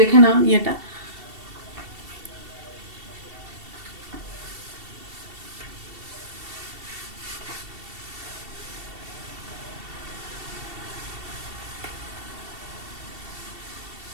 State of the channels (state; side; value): late; left; 2.7 ms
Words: দেখে নাও ইয়েটা।